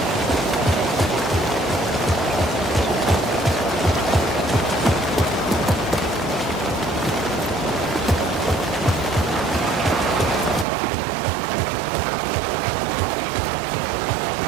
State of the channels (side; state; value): left; drops out; at 10.7 s